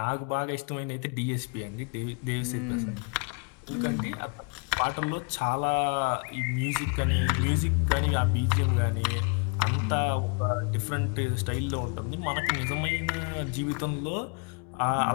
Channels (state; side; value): quieter; right; 35.5 dB